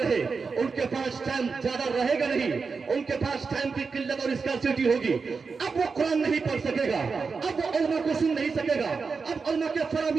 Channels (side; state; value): left; quieter; 4.9 dB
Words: रहे। उनके पास टाइम ज्यादा रहेगा नहीं, उनके पास टाइम की किल्लत और स्कार्सिटी होगी। अब वो कुरान नहीं पढ़ सकेगा, अब वो उलमा को सुन नहीं सकेगा, अब उलमा के